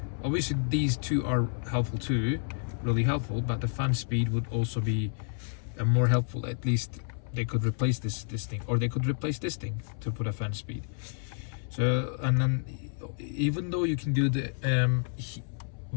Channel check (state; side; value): silent; right; 58 dB below the other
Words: Obviously these 2 are helpful too, really helpful, but the fan speed would also be more helpful. At least they could replace this thing, or they could replace this thing to put a fan speed. So, and then even though you can do the